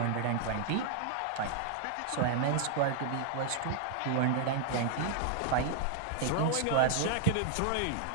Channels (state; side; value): different; both; correlation 0.00